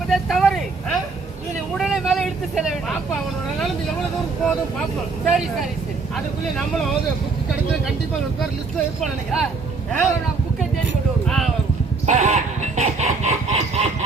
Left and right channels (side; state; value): left; quieter; 4.2 dB